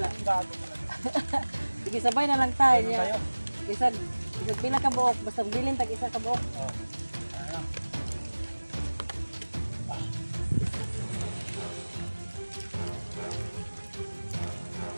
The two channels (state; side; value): inverted; both; correlation -1.00